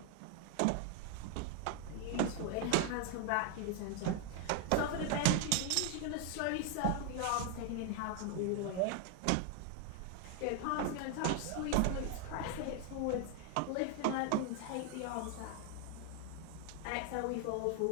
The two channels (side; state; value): both; different; correlation 0.00